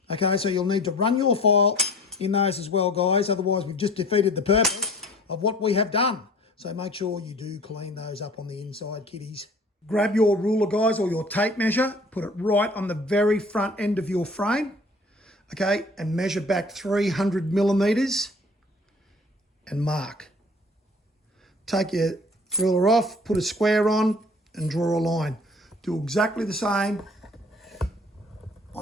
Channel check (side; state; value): both; normal; correlation 0.47